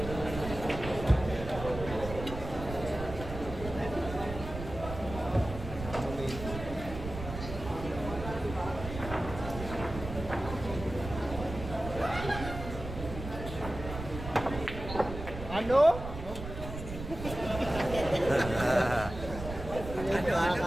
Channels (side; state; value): right; noise; rumble, 9 dB below the sound